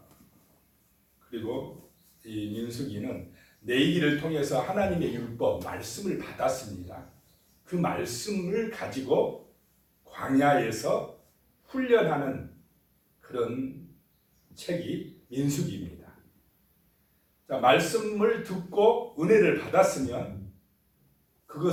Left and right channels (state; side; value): identical; both; correlation 1.00